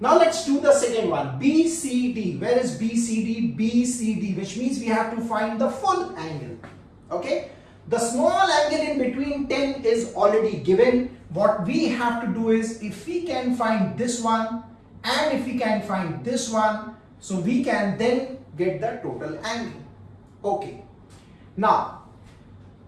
Now let's do the second one, BCD. Where is BCD? BCD, which means we have to find the full angle. Okay, the small angle in between 10 is already given. What we have to do is, if we can find this one and if we can find this one, so we can then get the total angle. Okay, now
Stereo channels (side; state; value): both; identical; correlation 1.00